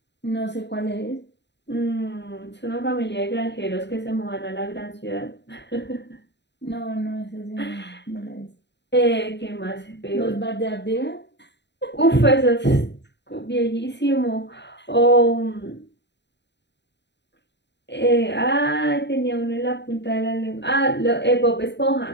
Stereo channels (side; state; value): right; late; 0.51 ms